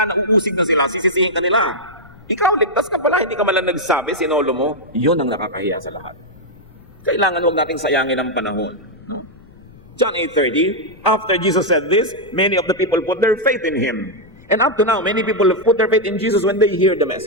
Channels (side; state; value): left; noise; rumble, 24 dB below the sound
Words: nauusig na sila, sisisihin ka nila. Ikaw, ligtas ka pala, hindi ka malang nagsabi, sinolo mo. Yun ang nakakahiya sa lahat. Kailangan huwag nating sayangin ang panahon. No? John 8:30, after Jesus said this, many of the people put their faith in Him. And up to now, many people have put their faith in Jesus when they hear the